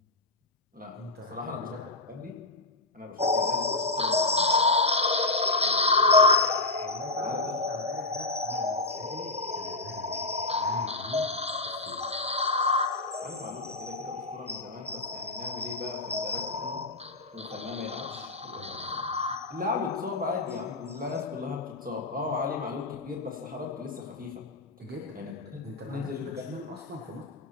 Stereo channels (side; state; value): right; quieter; 3.1 dB